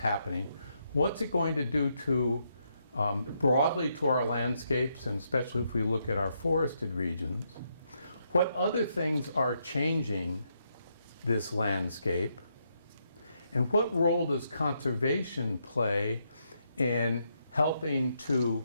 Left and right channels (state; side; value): inverted; both; correlation -0.78